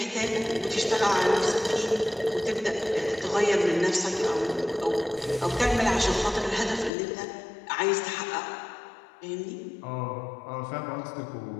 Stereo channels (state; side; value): drops out; right; at 6.9 s